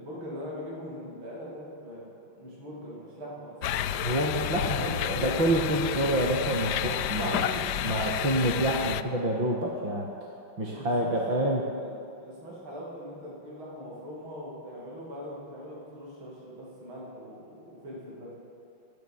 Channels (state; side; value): late; left; 5.1 ms